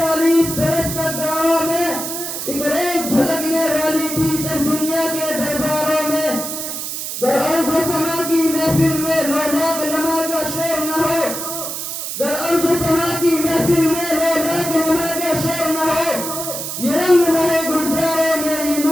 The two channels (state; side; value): noise; right; hiss, 5 dB below the sound